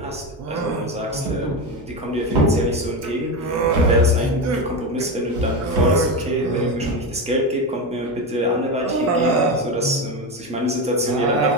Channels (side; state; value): both; normal; correlation 0.17